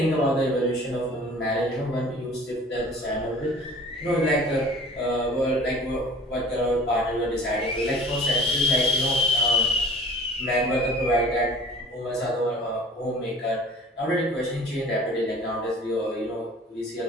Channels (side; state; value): both; normal; correlation 0.46